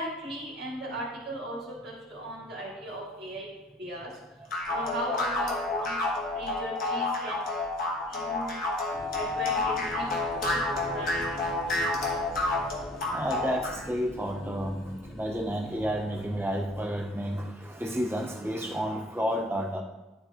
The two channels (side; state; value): both; normal; correlation 0.50